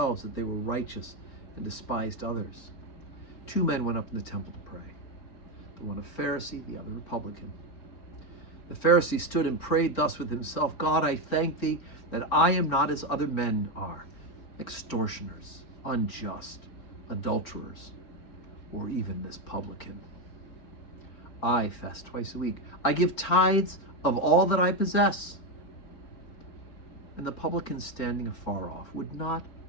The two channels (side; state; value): right; late; 4.4 ms